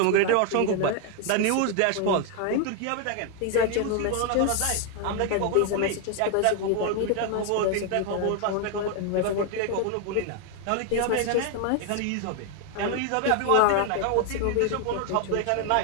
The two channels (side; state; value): both; different; correlation 0.01